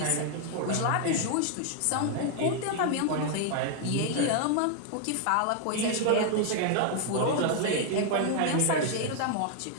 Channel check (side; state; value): both; different; correlation 0.00